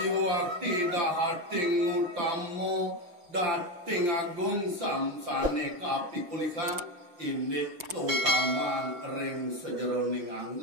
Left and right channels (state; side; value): late; left; 5.9 ms